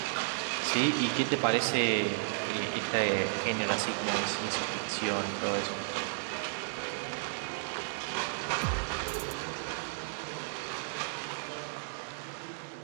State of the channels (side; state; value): left; silent; digital silence